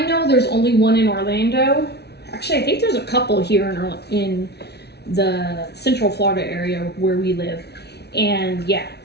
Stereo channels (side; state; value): right; late; 0.49 ms